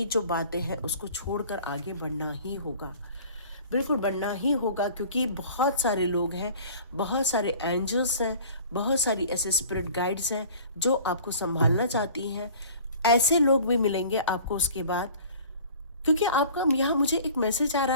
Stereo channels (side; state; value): both; inverted; correlation -0.46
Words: जो बातें हैं उसको छोड़कर आगे बढ़ना ही होगा। बिल्कुल बढ़ना ही होगा क्योंकि बहुत सारे लोग हैं, बहुत सारे एंजल्स हैं, बहुत सारी ऐसे स्पिरिट गाइड्स हैं जो आपको संभालना चाहती हैं। ऐसे लोग भी मिलेंगे आपको उसके बाद, क्योंकि आपका यहाँ मुझे एक मैसेज आ